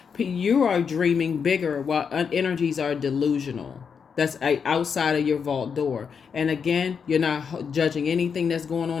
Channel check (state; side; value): quieter; right; 6.4 dB